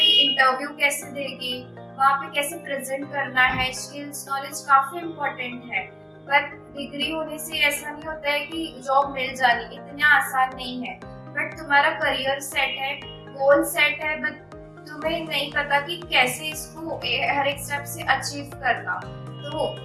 इंटरव्यू कैसे देंगे, वहाँ पे कैसे प्रेजेंट करना है, स्किल्स नॉलेज काफी इम्पोर्टेंट है। बट डिग्री होने से ऐसा नहीं होता है कि जॉब मिल जानी, इतना आसान नहीं है। बट तुम्हारा करियर सेट है, गोल सेट है, बट तुम्हें नहीं पता कि कैसे इसको हर एक स्टेप से अचीव करना। तो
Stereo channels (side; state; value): both; identical; correlation 1.00